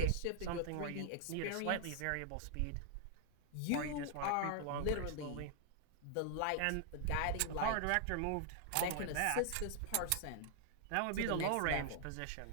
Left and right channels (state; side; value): different; both; correlation 0.00